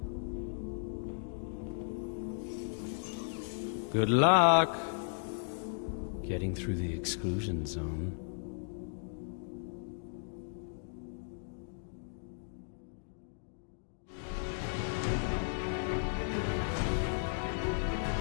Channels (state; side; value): silent; right; digital silence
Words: Good luck getting through the exclusion zone.